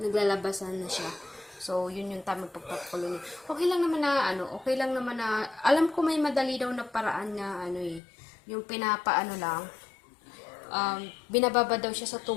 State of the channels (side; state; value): right; drops out; at 8.0 s